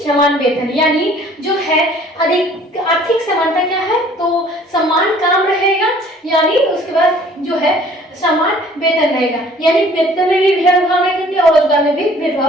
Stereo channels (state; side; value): normal; both; correlation 0.54